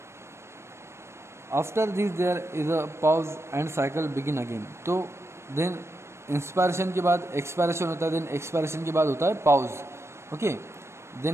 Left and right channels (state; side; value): late; left; 0.13 ms